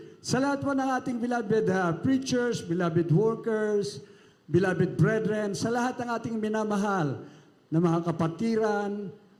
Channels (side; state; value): both; identical; correlation 1.00